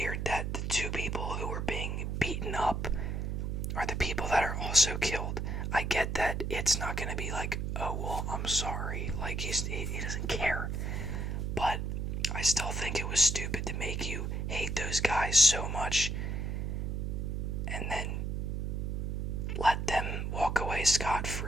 that the two people who were being beaten up are the people that are also killed. I get that it's not gonna be like, oh, well, I'm sorry, like, he doesn't care, but I still think it was stupid to make you hate those guys so much, and then let them walk away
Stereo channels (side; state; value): right; noise; hum, 1 dB below the sound